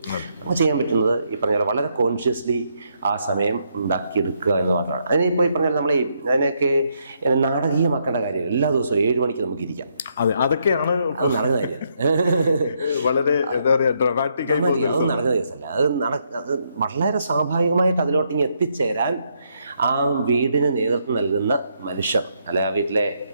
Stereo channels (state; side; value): inverted; both; correlation -0.75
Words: നമുക്ക് ചെയ്യാൻ പറ്റുന്നത് ഈ പറഞ്ഞ പോലെ വളരെ കോൺഷ്യസ്ലി ആ സമയം ഉണ്ടാക്കിയെടുക്കുക എന്ന് മാത്രമാണ്. അതിനിപ്പോൾ ഈ പറഞ്ഞാൽ നമ്മൾ അതിനൊക്കെ നാടകീയമാക്കേണ്ട കാര്യം. എല്ലാ ദിവസവും 7 മണിക്ക് നമുക്ക് ഇരിക്കാം. അതൊക്കെയാണ് അത് നടക്കുന്ന കാര്യം. വളരെ എന്താ പറയുക, ഡ്രമാറ്റിക് ആയി അത് നടക്കുന്ന കേസല്ല. അത് വളരെ സ്വാഭാവികമായിട്ട് അതിലോട്ടിങ്ങ് എത്തിച്ചേരാൻ ആ വീടിന് നേതൃത്വം നൽകുന്ന മനുഷ്യർ, അല്ലെ ആ വീട്ടിലെ